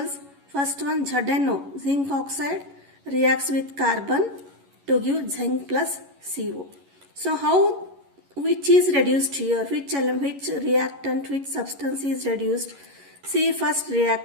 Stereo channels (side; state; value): left; late; 11 ms